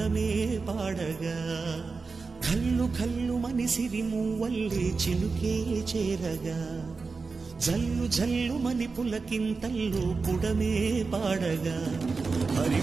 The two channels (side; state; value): left; quieter; 4.4 dB